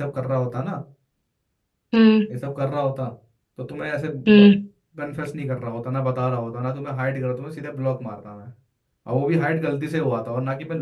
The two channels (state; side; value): identical; both; correlation 1.00